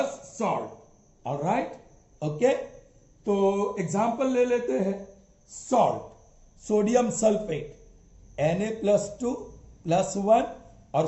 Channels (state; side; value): identical; both; correlation 1.00